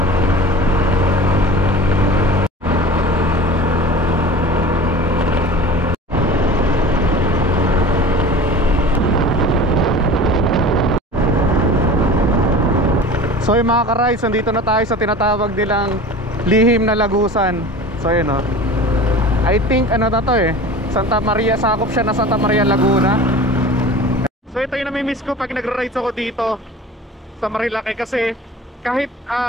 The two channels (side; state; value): both; normal; correlation 0.38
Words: So yung mga ka-rides, nandito na tayo sa tinatawag nilang lihim na lagusan. So yun o, I think ano na to Santa Maria, sakop siya na Santa Maria, Laguna. So ito yung namimiss ko pag nagra-rides ako dito sa Marilaki, kasi kahit